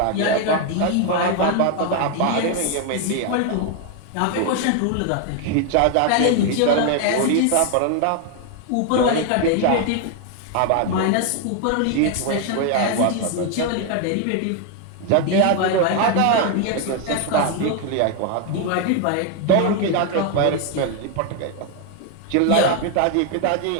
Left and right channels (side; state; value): both; different; correlation 0.01